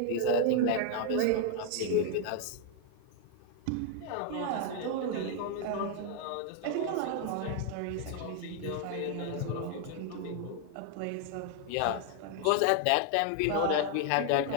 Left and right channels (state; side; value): different; both; correlation 0.00